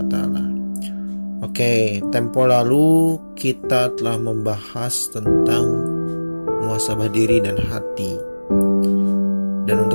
wa Ta'ala. Oke, tempo lalu kita telah membahas tentang muhasabah diri dan hati. Dan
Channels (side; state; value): both; inverted; correlation -1.00